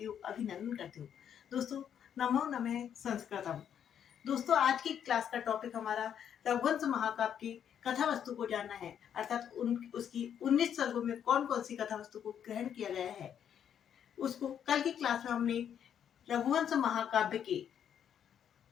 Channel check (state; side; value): quieter; right; 8.9 dB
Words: हूँ, अभिनंदन करती हूँ। दोस्तों, नमो नमः संस्कृतम। दोस्तों, आज की क्लास का टॉपिक हमारा रघुवंश महाकाव्य की कथा वस्तु को जानना है, अर्थात उसकी 19 सर्गों में कौन कौन सी कथा वस्तु को ग्रहण किया गया है। उसको कल की क्लास में हमने रघुवंश महाकाव्य के